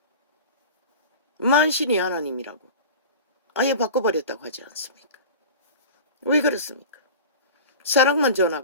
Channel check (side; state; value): both; inverted; correlation -0.34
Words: 만신이 하나님이라고 아예 바꿔버렸다고 하지 않습니까? 왜 그렇습니까? 사랑만